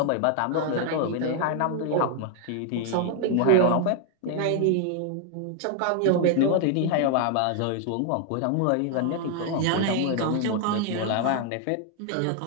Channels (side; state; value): both; different; correlation 0.00